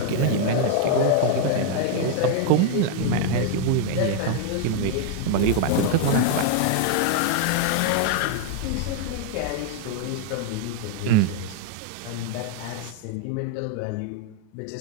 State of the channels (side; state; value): both; different; correlation 0.00